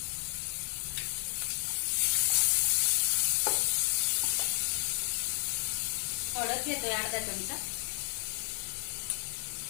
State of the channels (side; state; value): right; silent; 56 dB below the other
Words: हळद घेतोय अर्धा चमचा,